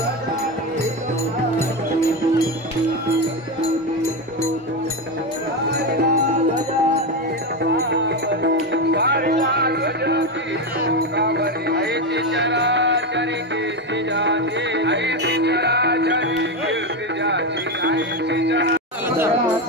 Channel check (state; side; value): normal; both; correlation 0.13